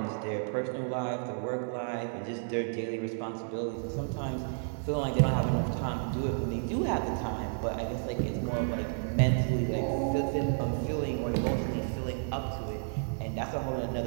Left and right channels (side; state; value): left; silent; 57 dB below the other